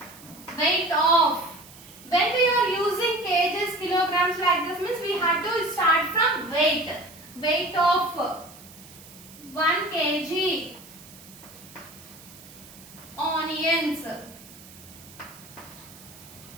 when we are using kgs, kilograms like this means we have to start from weight. Weight of 1 kg onions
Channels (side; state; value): right; noise; hiss, 20 dB below the sound